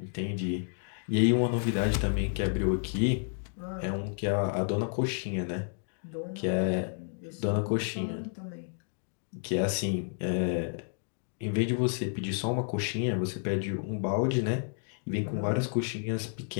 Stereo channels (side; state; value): right; silent; digital silence